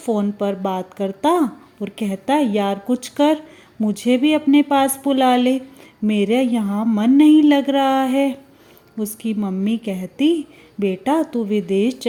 पर बात करता और कहता, यार कुछ कर, मुझे भी अपने पास बुला ले, मेरे यहाँ मन नहीं लग रहा है। उसकी मम्मी कहती, बेटा तू विदेश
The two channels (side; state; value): both; identical; correlation 1.00